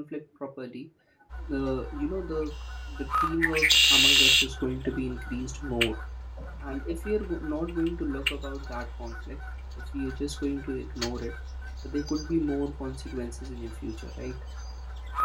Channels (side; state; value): both; identical; correlation 1.00